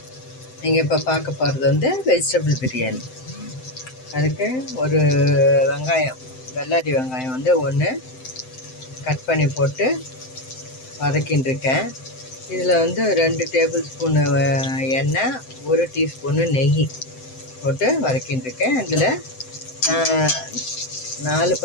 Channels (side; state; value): right; late; 7.8 ms